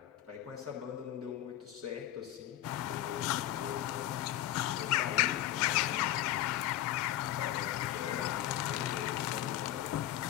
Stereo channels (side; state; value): right; quieter; 13.3 dB